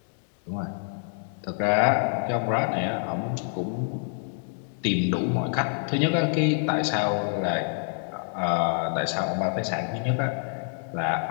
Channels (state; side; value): silent; right; 60 dB below the other